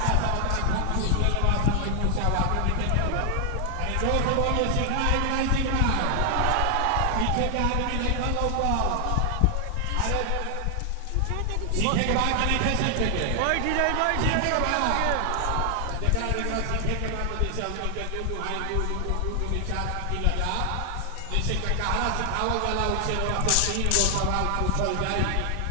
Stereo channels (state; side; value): different; both; correlation 0.00